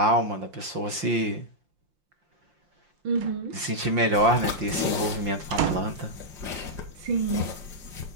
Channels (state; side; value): late; left; 5.7 ms